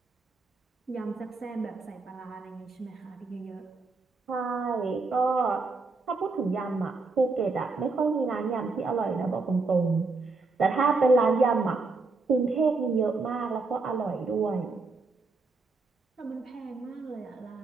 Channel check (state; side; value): quieter; left; 3.9 dB